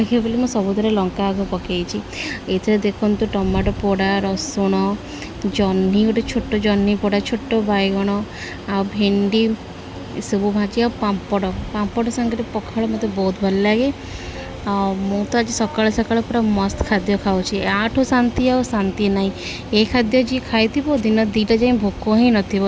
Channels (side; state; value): both; identical; correlation 1.00